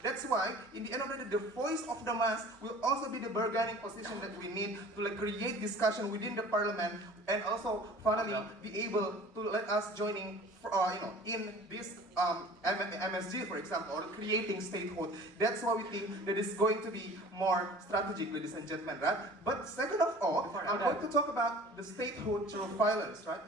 That's why, in the end of the day, the voice of the mass will also be the bargaining position that we need to create discussion within the parliament, and also finally be able to let us joining in this MSG, for example, or creating statehood. That's why we think that it's going to be more strategic, ladies and gentlemen, right? But second of all, I'm going to talk about the statehood through violence, right?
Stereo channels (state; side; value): normal; both; correlation 0.45